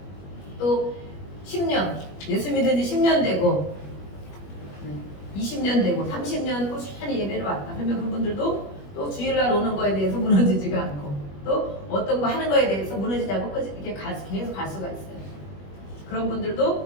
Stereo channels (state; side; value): late; right; 21 ms